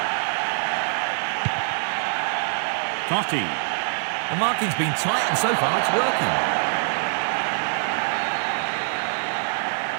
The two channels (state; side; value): silent; left; digital silence